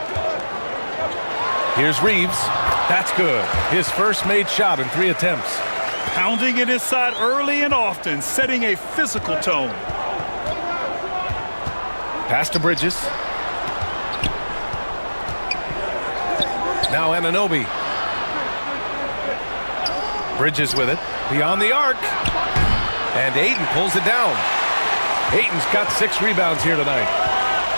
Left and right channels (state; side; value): inverted; both; correlation -1.00